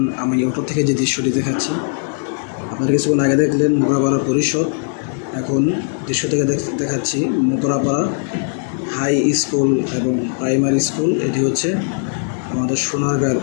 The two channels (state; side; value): silent; right; digital silence